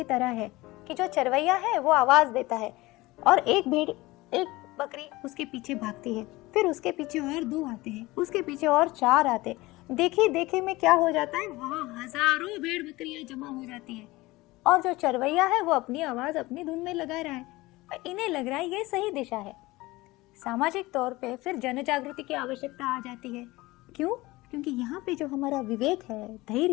तरह है कि जो चरवैया है वो आवाज देता है और एक बकरी उसके पीछे भागती है, फिर उसके पीछे और 2 आते हैं, उसके पीछे और 4 आते। देखिए में क्या हो जाता है, वहाँ हजारों भेड़ बकरियां जमा हो जाती है और जो चरवैया है वो अपनी आवाज अपनी धुन में लगा रहा है और इन्हें लग रहा है ये सही दिशा है। सामाजिक तौर पे फिर जन जागृति की आवश्यकता आ जाती है। क्यों? क्योंकि यहाँ पे जो हमारा विवेक है,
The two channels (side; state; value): right; quieter; 20.3 dB